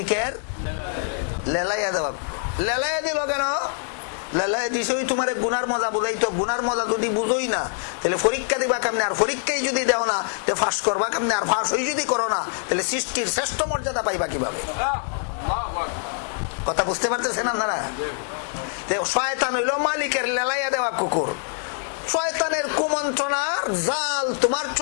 লেলাইয়া দেওয়া। লেলাইয়া দিল কেন? লেলাইয়া দিছে ওই তোমার গুনার মজা বুঝাইতো। গুনার মজা যদি বুঝোই না তাহলে পরীক্ষা দিবা কেমনে, আর পরীক্ষায় যদি দেও না তো ফাঁস করবা কেমনে, আর ফাঁস হই যদি করো না তাহলে সৃষ্টির শ্রেষ্ঠ মর্যাদা পাইবা কিভাবে? কথা বুঝতে পারতেছেন আপনারা? শয়তান হইল মালিকের লেলাইয়া দেওয়া কুকুর। শয়তানের কুমন্ত্রণার জাল তোমার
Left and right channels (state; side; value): silent; right; digital silence